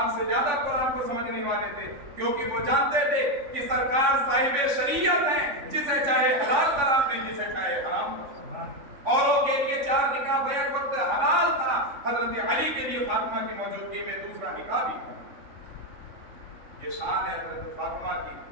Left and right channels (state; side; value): late; left; 3.6 ms